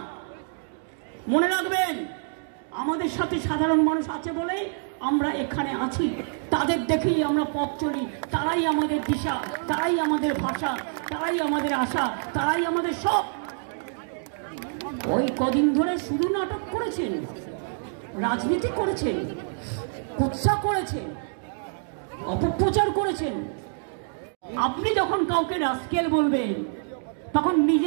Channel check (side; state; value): left; silent; digital silence